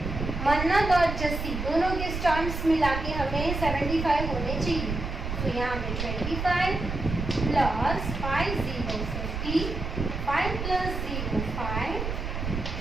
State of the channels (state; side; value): noise; right; rumble, 4 dB below the sound